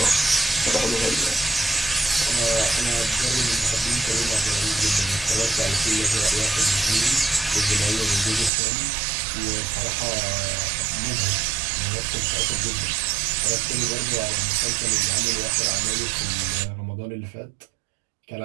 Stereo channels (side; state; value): left; drops out; at 8.5 s